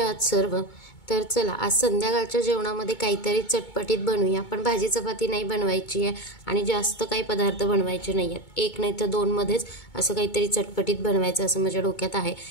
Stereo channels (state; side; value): late; right; 2.2 ms